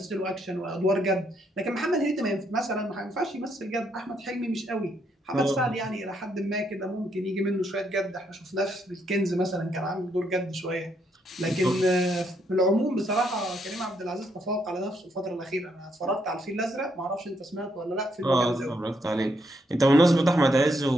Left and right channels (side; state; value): both; normal; correlation 0.75